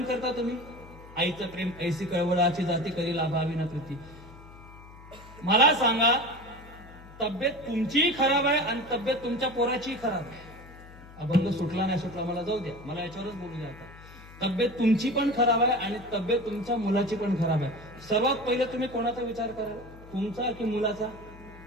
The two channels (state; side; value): noise; left; hum, 19 dB below the sound